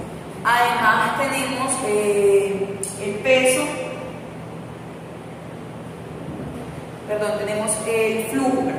Además tenemos el peso. Tenemos el flujo.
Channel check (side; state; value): both; identical; correlation 1.00